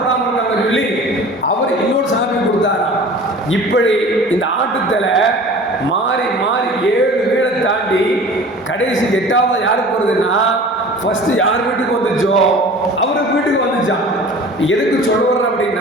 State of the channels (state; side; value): normal; both; correlation 0.42